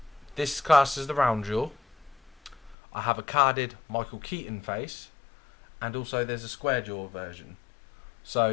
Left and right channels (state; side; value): drops out; right; at 2.8 s